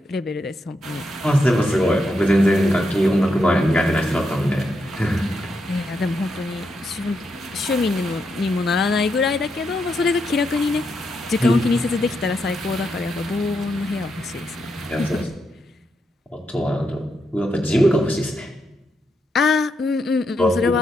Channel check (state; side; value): normal; both; correlation 0.82